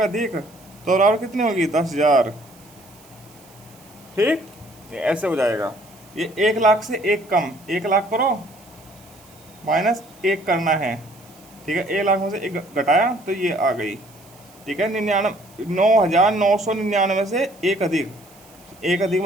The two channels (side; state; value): right; noise; hiss, 26 dB below the sound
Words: अधिक, तो बराबर कितनी होगी? 10,000। ठीक, ये ऐसे हो जाएगा। ये 1 लाख से 1 कम, 1 लाख करो माइनस 1 करना है। ठीक है, 1 लाख में से 1 घटाया तो ये आ गई। ठीक है, 9,999 से एक अधिक, एक अधिक